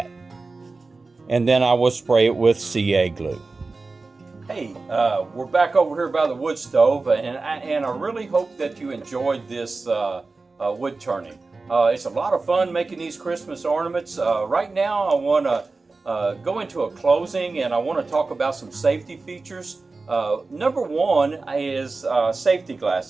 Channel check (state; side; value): quieter; left; 3.8 dB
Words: And then I will spray it with CA glue. Hey, we're back over here by the wood stove, and I really hope that you enjoyed this wood turning. It's a lot of fun making these Christmas ornaments. Right now I want to go into a closing, and I want to talk about some safety features. Number one is safety